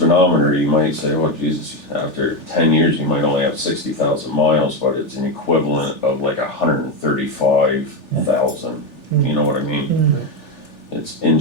you might say, oh Jesus, after 10 years, you might only have 60,000 miles, but it's an equivalent of like 135,000. You know what I mean? It's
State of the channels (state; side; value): late; right; 3.4 ms